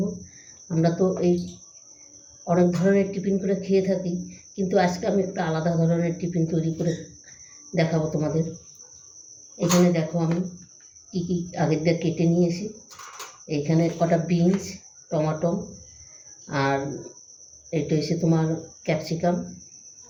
আমরা তো এই অনেক ধরনের টিফিন করে খেয়ে থাকি, কিন্তু আজকে আমি একটা আলাদা ধরনের টিফিন তৈরি করে দেখাবো তোমাদের। এখানে দেখো আমি কী কী আগের দিয়ে কেটে নিয়েছি। এইখানে কটা বিনস, টমাটো, আর এটা হচ্ছে তোমার ক্যাপসিকাম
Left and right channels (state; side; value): identical; both; correlation 1.00